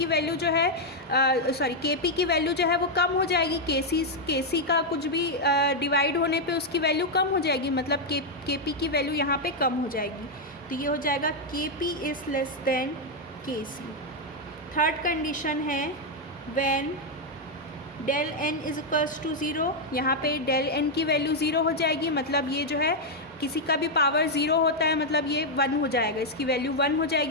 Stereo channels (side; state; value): both; normal; correlation 0.00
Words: वैल्यू जो है Kp की वैल्यू जो है वो कम हो जाएगी। Kc का कुछ भी डिवाइड होने पे उसकी वैल्यू कम हो जाएगी, मतलब Kp की वैल्यू यहाँ पे कम हो जाएगी। तो ये हो जाएगा Kp is less than Kc। Third condition है when del N is equals to zero, यहाँ पे डेल एन की वैल्यू ज़ीरो हो जाएगी, मतलब ये जो है किसी का भी पावर ज़ीरो होता है मतलब ये वन हो जाएगा, इसकी वैल्यू वन हो